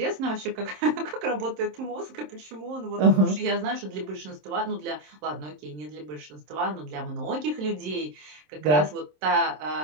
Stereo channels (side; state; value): left; late; 27 ms